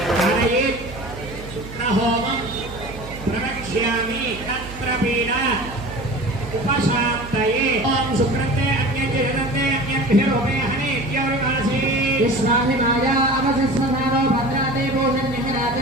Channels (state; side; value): noise; right; hum, 13 dB below the sound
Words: प्रवक्ष्यामि तत्रपीडा उपशान्तये ओम सुकृते अन्यजयते अन्यभिरोपे हनेत्योरिवासी विश्वानि माया अवसस्वनारो भद्राते